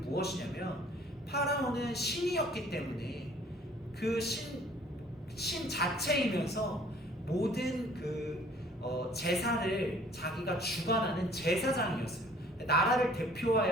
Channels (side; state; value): both; normal; correlation 0.55